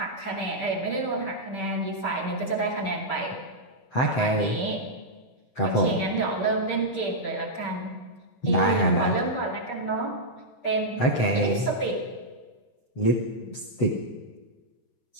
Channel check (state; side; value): late; right; 7.8 ms